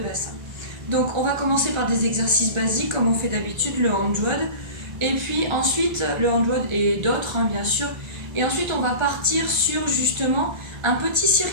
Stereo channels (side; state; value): left; late; 1.4 ms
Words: Donc on va commencer par des exercices basiques comme on fait d'habitude, le hand WOD, et puis ensuite le hand WOD et d'autres bien sûr, et ensuite on va partir sur justement un petit